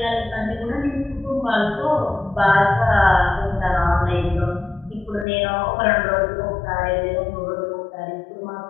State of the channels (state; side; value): drops out; right; at 5.2 s